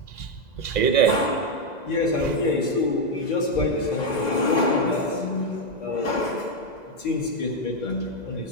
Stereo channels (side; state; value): right; late; 2.0 ms